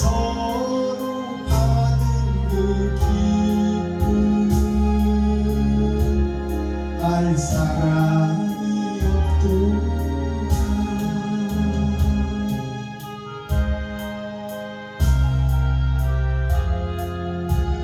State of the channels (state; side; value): identical; both; correlation 1.00